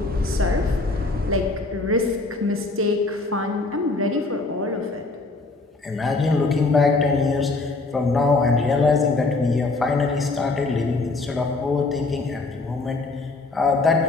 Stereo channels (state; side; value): quieter; right; 3.4 dB